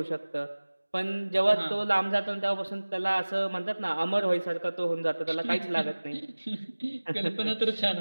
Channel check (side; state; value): both; inverted; correlation -1.00